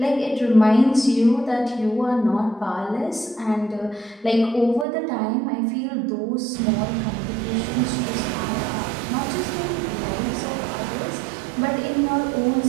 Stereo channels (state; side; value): drops out; left; at 4.9 s